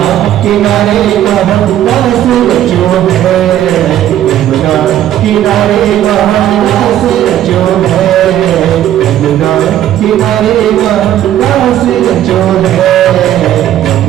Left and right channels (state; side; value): quieter; left; 11.9 dB